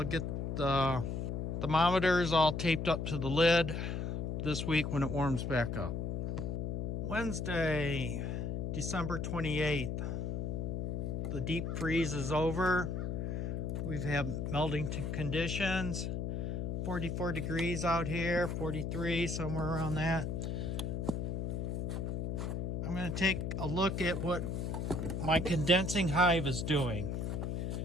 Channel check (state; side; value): noise; left; hum, 2 dB below the sound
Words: get the thermometers all taped up to the lid this week when it warms back up. Wednesday, December 28th. The deep freeze is over. We've had melting conditions. 44 degrees out here, 43, somewhere around that. I'm going to take a look at what my condensing hive is doing.